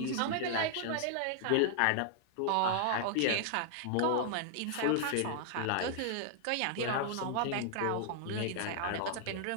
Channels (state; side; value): different; both; correlation 0.00